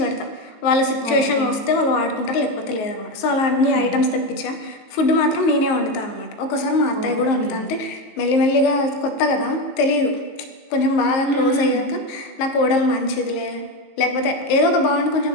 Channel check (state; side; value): late; right; 19 ms